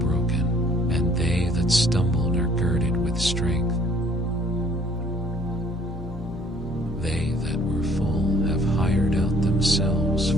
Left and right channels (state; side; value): normal; both; correlation 0.59